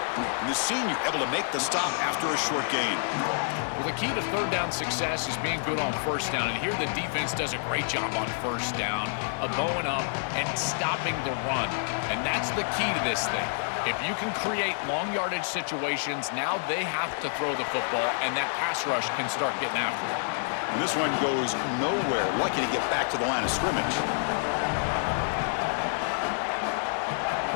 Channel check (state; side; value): silent; right; digital silence